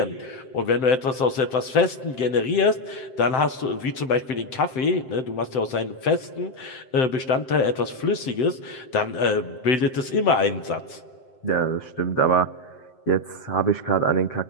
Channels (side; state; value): right; late; 7.7 ms